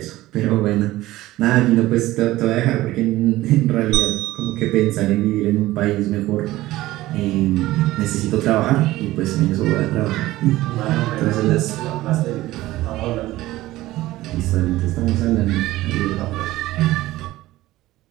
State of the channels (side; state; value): left; quieter; 16.9 dB